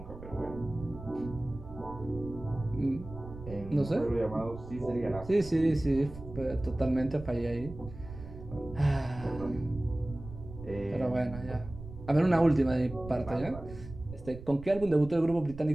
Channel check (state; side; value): noise; right; rumble, 14 dB below the sound